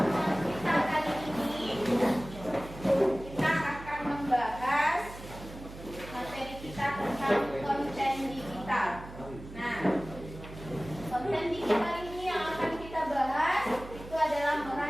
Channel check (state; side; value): noise; right; hum, 14 dB below the sound